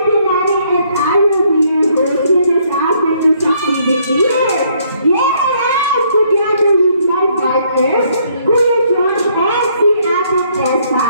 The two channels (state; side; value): inverted; both; correlation -0.67